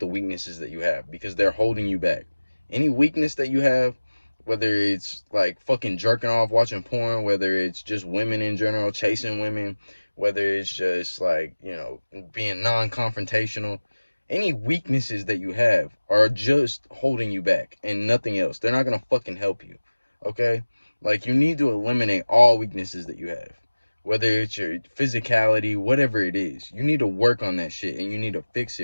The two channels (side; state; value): both; inverted; correlation -1.00